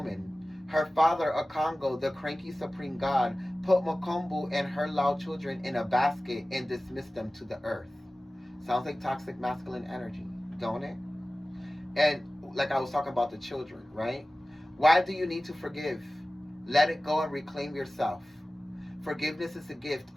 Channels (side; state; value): both; normal; correlation 0.97